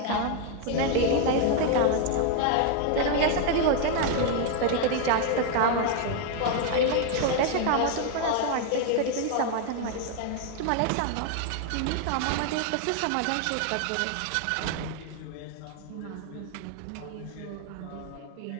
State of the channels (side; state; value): both; different; correlation 0.00